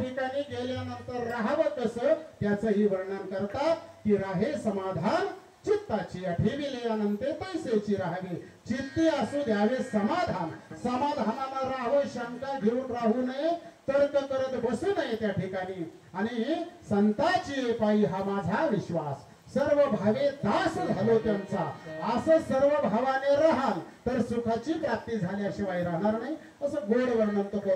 गेल्यानंतर राहावं कसं त्याचंही वर्णन करतात. की राहे समाधान चित्ताची ठेविले अनंते पैसेची राहावी. चित्ती असू द्यावे समाधान, समाधानानं राहावं, शंका घेऊन राहू नये, तर्क करत बसू नये त्या ठिकाणी. आणि संताची पायी हा माझा विश्वास, सर्व भावे दास झालो त्यांचा. असं सर्व भावाने राहाल तर सुखाची प्राप्ती झाल्याशिवाय राहणार नाही. असं गोड वर्णन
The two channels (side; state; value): both; identical; correlation 1.00